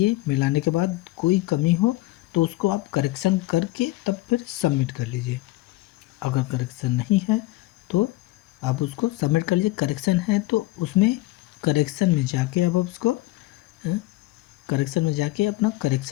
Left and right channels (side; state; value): right; quieter; 18.8 dB